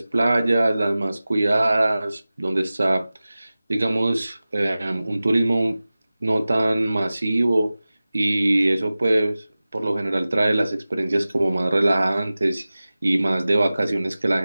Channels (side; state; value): both; inverted; correlation -0.97